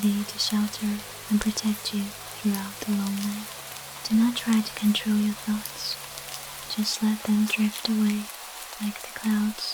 to shelter and protect you throughout the long night. Do not try to control your thoughts. Just let them drift away like the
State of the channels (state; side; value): identical; both; correlation 1.00